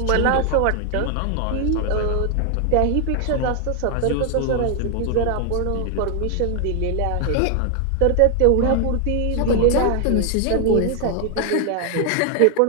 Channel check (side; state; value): both; different; correlation 0.00